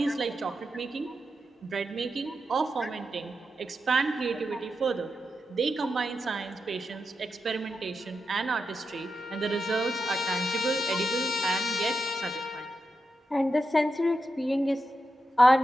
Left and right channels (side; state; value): both; normal; correlation 0.88